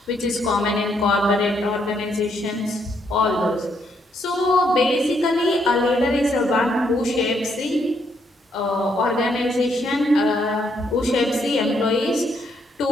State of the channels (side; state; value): both; normal; correlation 0.74